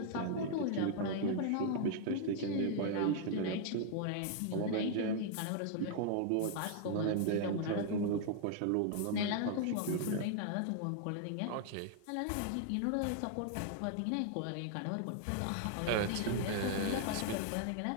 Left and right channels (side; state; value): both; different; correlation 0.00